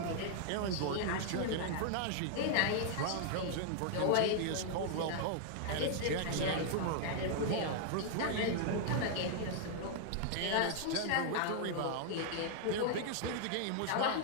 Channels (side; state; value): both; different; correlation -0.01